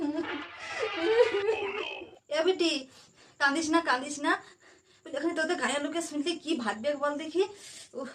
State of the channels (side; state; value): both; identical; correlation 1.00